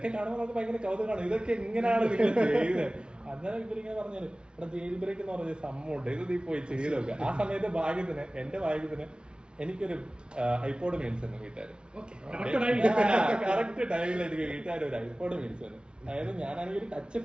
കാണുമ്പോൾ നമുക്ക് ഭയങ്കര കൗതുകമാണ്. ഇതൊക്കെ എങ്ങനെയാണ് നിങ്ങൾ ചെയ്തത്? അന്നേരം ഇവരിങ്ങനെ പറഞ്ഞത് ഇവിടെ ജയിൽ ബ്രേക്ക് എന്ന് പറഞ്ഞ സംഭവമുണ്ട്, ഇത് നീ പോയി ചെയ്ത് നോക്കുക. ആ സമയത്ത് ഭാഗ്യത്തിന് എന്റെ ഭാഗ്യത്തിന് എനിക്കൊരു ഐപോഡ് മേടിച്ചു തന്നു വീട്ടുകാര്. കറക്റ്റ് ടൈമിൽ എനിക്ക് വീട്ടുകാർ ഒരു ഐപോഡ് മേടിച്ചു തന്നു. അതായത് ഞാനാണെങ്കിൽ ഒരു ടച്ച്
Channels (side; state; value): left; late; 0.056 ms